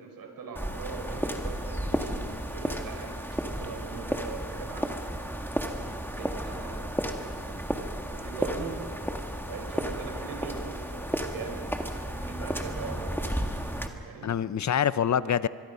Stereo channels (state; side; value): normal; both; correlation 0.43